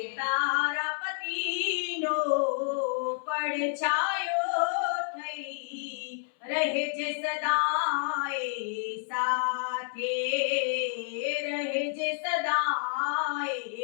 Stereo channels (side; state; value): right; silent; 58 dB below the other